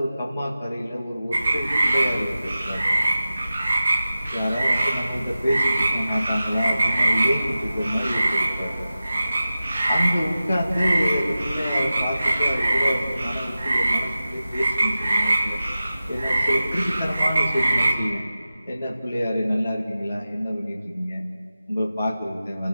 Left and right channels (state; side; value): inverted; both; correlation -0.94